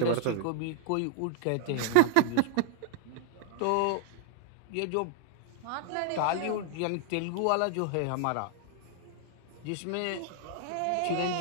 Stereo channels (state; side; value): different; both; correlation 0.00